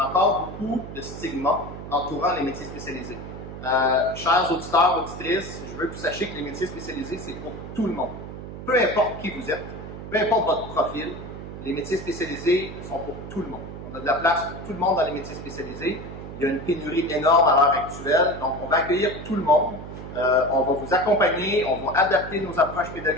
a encore beaucoup de stigmas entourant les métiers spécialisés. Chers auditeurs, auditrices, je veux que vous sachiez que les métiers spécialisés, c'est pour tout le monde. Peu importe qui vous êtes, peu importe votre profil, les métiers spécialisés sont pour tout le monde. On a de la place pour tout le monde dans les métiers spécialisés. Il y a une pénurie énorme à l'heure actuelle, donc on va accueillir tout le monde. On va vous accompagner, on va adapter nos approches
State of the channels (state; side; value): noise; right; hum, 11 dB below the sound